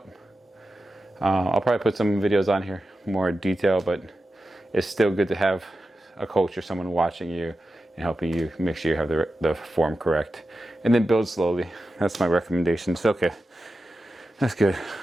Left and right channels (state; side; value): normal; both; correlation 0.92